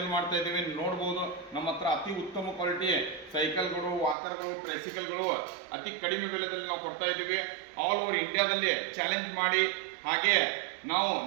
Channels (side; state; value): left; drops out; at 4.2 s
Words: ಮಾಡ್ತಾ ಇದ್ದೀವಿ. ನೋಡ್ಬೋದು ನಮ್ಮ ಹತ್ರ ಅತಿ ಉತ್ತಮ ಕ್ವಾಲಿಟಿ ಸೈಕಲ್ಗಳು, ವಾಕರ್ಗಳು, ಟ್ರೈಸಿಕಲ್ಗಳು ಅತಿ ಕಡಿಮೆ ಬೆಲೆದಲ್ಲಿ ನಾವು ಕೊಡ್ತಾ ಇದ್ದೀವಿ. ಆಲ್ ಓವರ್ ಇಂಡಿಯಾದಲ್ಲಿ ಚಾಲೆಂಜ್ ಮಾಡಿ, ಹಾಗೆ ನಾವು